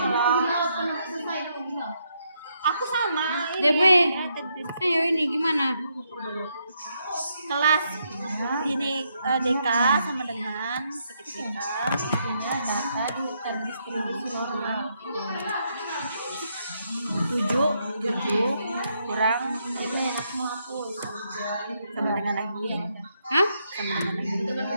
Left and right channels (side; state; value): both; inverted; correlation -0.77